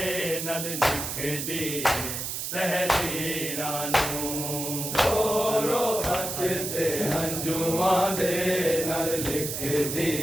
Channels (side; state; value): right; noise; hiss, 4 dB below the sound